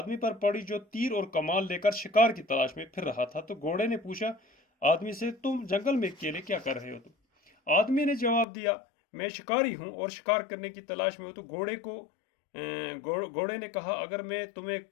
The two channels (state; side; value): drops out; right; at 8.5 s